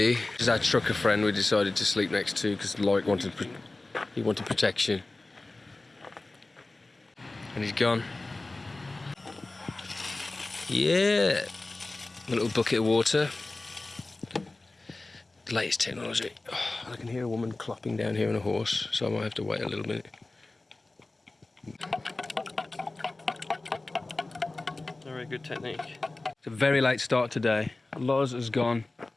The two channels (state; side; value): quieter; right; 3.1 dB